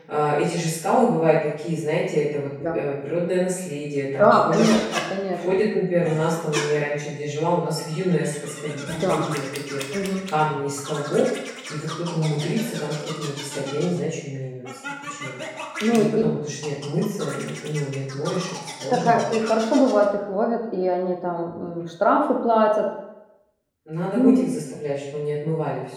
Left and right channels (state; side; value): identical; both; correlation 1.00